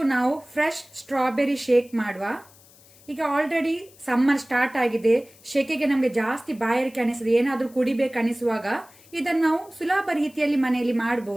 ನಾವು fresh strawberry shake ಮಾಡುವ. ಈಗ ಆಲ್ರೆಡಿ ಸಮ್ಮರ್ ಸ್ಟಾರ್ಟ್ ಆಗಿದೆ, ಶೆಕೆಗೆ ನಮಗೆ ಜಾಸ್ತಿ ಬಾಯಾರಿಕೆ ಅನಿಸ್ತದೆ, ಏನಾದರೂ ಕುಡಿಬೇಕು ಅನಿಸುವಾಗ ಇದನ್ನು ನಾವು ಸುಲಭ ರೀತಿಯಲ್ಲಿ ಮನೆಯಲ್ಲಿ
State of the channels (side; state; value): left; noise; hiss, 26 dB below the sound